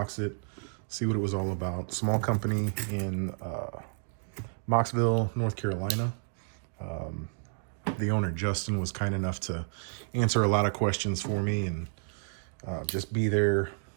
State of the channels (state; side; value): silent; left; digital silence